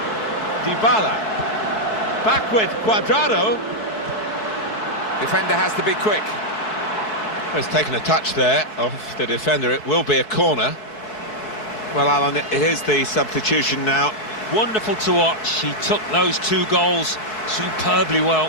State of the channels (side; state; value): right; late; 4.6 ms